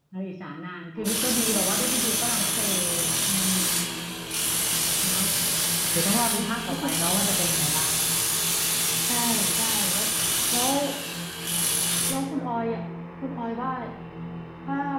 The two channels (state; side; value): identical; both; correlation 1.00